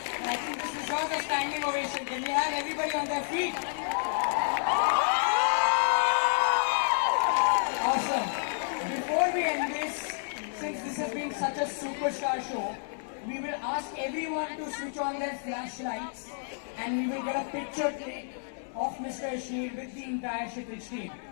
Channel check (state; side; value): silent; right; digital silence